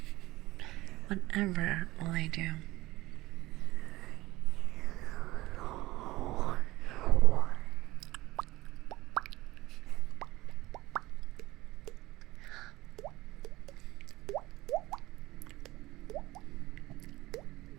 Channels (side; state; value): left; quieter; 18.4 dB